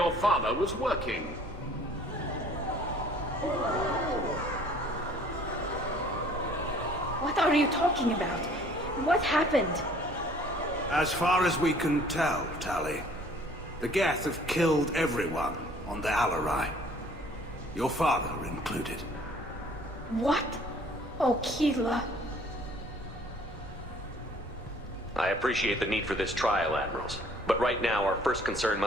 father was working. What are you talking about? What happened? As far as we can tell, Tali, the Geth have killed everyone on the Alarai. Your father included. What? Oh, Keela. I appreciate the need for this trial, Admirals. But right now, our first concern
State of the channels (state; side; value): normal; both; correlation 0.55